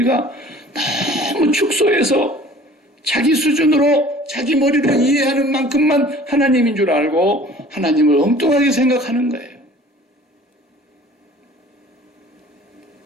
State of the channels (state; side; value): normal; both; correlation 0.48